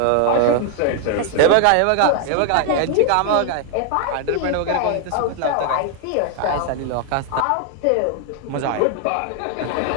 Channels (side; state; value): both; different; correlation 0.00